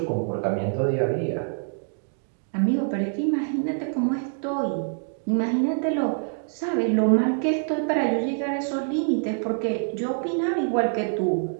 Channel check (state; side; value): silent; left; digital silence